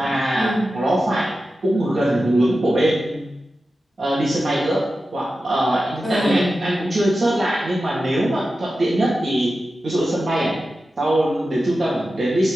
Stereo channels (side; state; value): both; normal; correlation 0.93